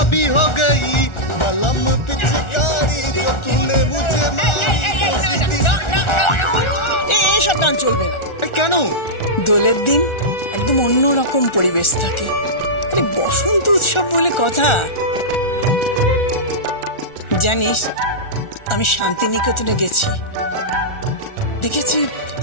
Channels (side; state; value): right; late; 1.4 ms